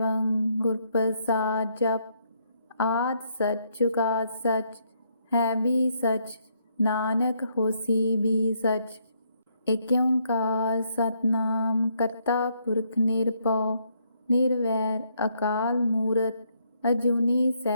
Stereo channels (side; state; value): both; inverted; correlation -0.73